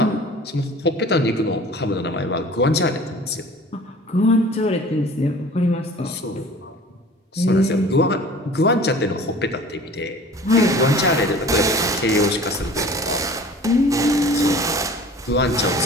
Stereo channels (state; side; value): normal; both; correlation 0.45